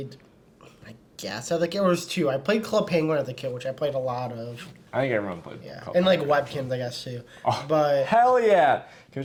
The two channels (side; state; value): both; identical; correlation 1.00